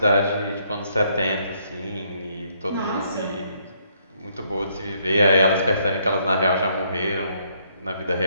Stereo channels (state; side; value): inverted; both; correlation -0.70